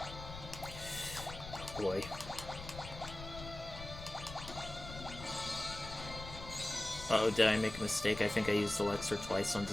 Boy. Uh-oh, did I make a mistake? I think I used Elixir twice on the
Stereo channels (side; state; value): left; noise; rumble, 11 dB below the sound